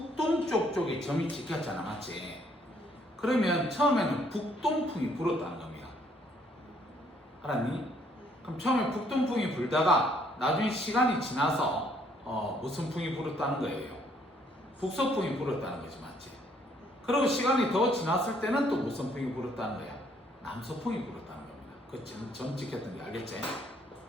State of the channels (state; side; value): normal; both; correlation 0.67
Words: 쪽에 점이 찍혔잖아, 맞지? 그러면 처음에는 북동풍이 불었다는 겁니다. 알았니? 그럼 처음에 북동풍이 불다가 나중에 시간이 지나서 무슨 풍이 불었다는 거예요? 북서풍이 불었다는 거지, 맞지? 그리고 시간이 더 지났을 때는 또 무슨 풍이 불었다는 거야? 남서풍이 불었다는 겁니다. 그 점 찍혔던 게 알겠지?